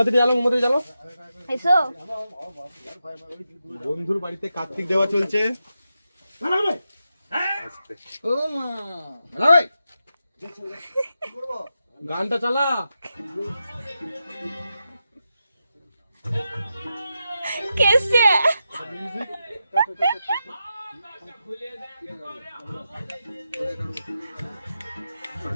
জ্বালো, মোমবাতি জ্বালো। এসো বন্ধুর বাড়িতে কার্তিক দেওয়া চলছে। গানটা চালা। কেসে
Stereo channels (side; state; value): both; inverted; correlation -0.88